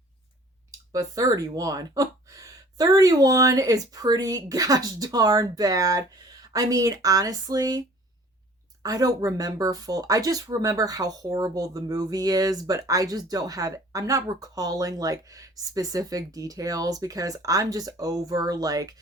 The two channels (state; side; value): normal; both; correlation 0.51